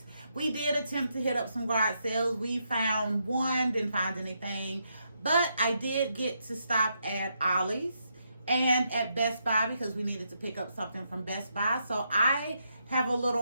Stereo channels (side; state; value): both; inverted; correlation -0.80